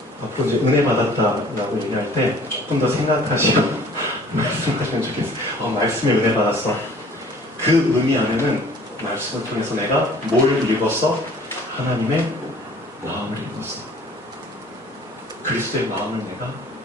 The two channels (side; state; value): both; normal; correlation 0.52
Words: 앞으로 이제 은혜 받았다라고 얘기할 때 조금 더 생각하시고 말씀하시면 좋겠어요. 말씀에 은혜 받았어. 그 의미 안에는 말씀을 통해서 내가 뭘 읽었어? 하나님의 마음을 읽었어. 그리스도의 마음을 내가